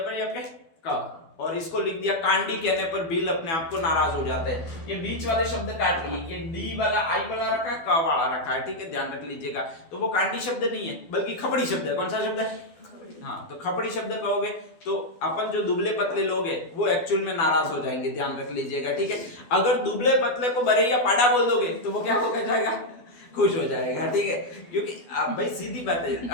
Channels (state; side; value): late; right; 12 ms